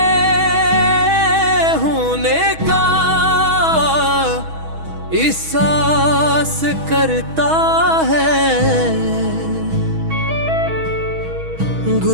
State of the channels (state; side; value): late; left; 6.2 ms